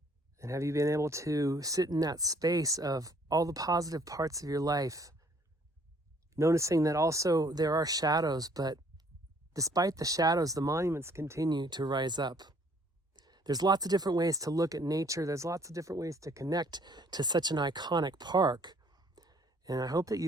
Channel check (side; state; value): both; normal; correlation 0.61